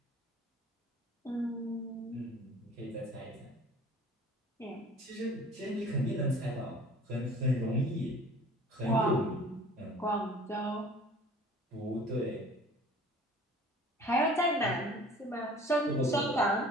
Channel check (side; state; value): both; normal; correlation 0.47